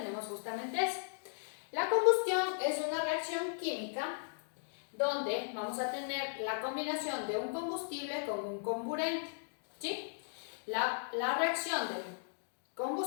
justamente eso. La combustión es una reacción química donde vamos a tener la combinación de un combustible con un comburente, ¿sí? La reacción del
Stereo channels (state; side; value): silent; right; digital silence